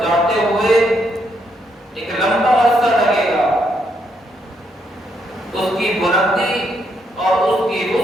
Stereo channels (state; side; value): normal; both; correlation 0.76